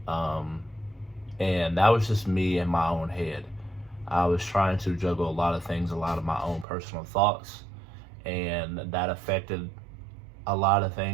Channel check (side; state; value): left; drops out; at 6.7 s